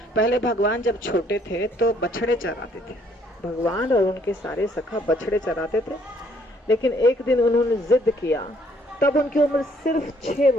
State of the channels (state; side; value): normal; both; correlation 0.65